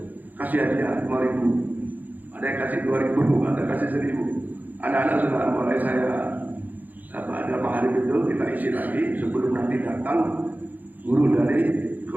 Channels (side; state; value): left; late; 0.082 ms